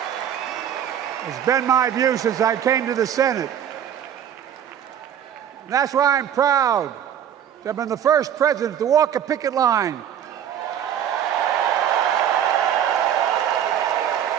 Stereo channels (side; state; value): left; quieter; 9.6 dB